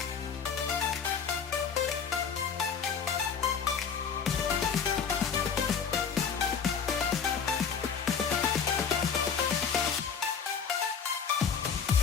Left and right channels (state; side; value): quieter; right; 6.6 dB